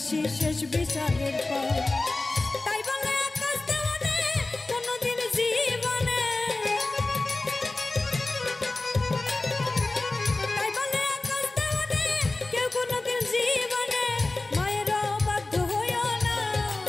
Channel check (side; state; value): right; quieter; 3.1 dB